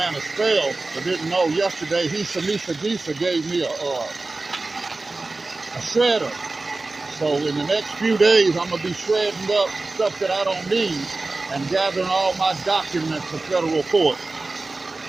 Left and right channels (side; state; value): left; quieter; 3.4 dB